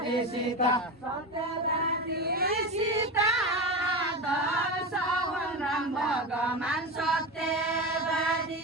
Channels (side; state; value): both; normal; correlation 0.21